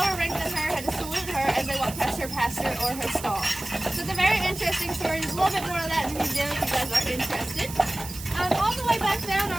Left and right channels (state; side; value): noise; right; hiss, 12 dB below the sound